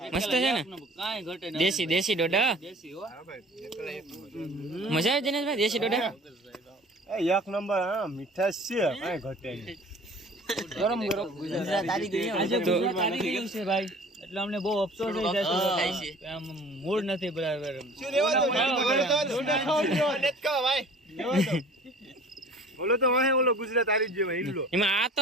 મસ્ત છે ને, દેશી ડોડા. મજા આવે દિનેશભાઈ દેશી ડોડા? એક નંબર. હા, મીઠાશ છે, કાંઈ ઘટે નહીં. ગરમ ગુજરાત આવી ગયું છે ભાઈ, એટલે અમને બહુ અફસોસ થઈ જશે. આમ મૂડ નથી બરાબર. ઓલો તો વાહે ઓલો ગુજરાત આવી ગયો હિલ્લો. એમાં આ તો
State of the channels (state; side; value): normal; both; correlation 0.46